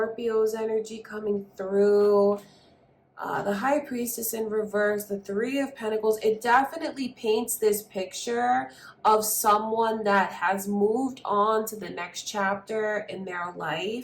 energy coming through, the High Priestess in reverse, the Three of Pentacles, it definitely paints this picture of someone that has moved on to the next chapter in their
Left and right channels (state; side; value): identical; both; correlation 1.00